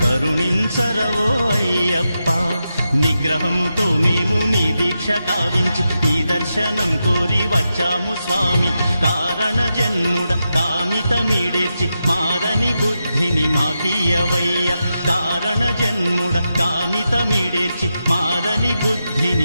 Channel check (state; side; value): inverted; both; correlation -0.88